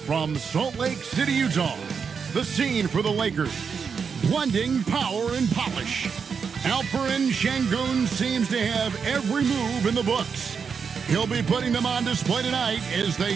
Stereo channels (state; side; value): quieter; left; 6.1 dB